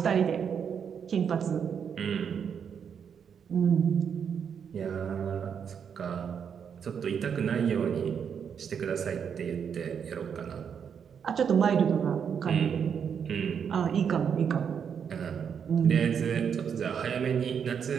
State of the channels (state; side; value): quieter; left; 7.3 dB